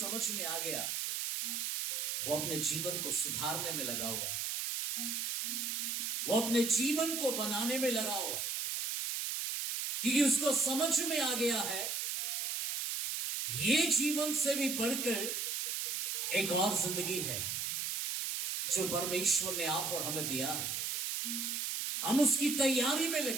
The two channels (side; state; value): right; noise; hiss, 1 dB below the sound